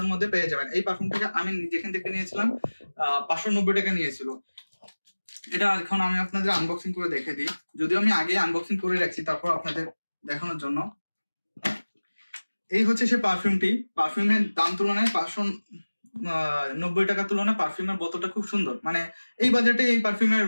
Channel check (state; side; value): inverted; both; correlation -1.00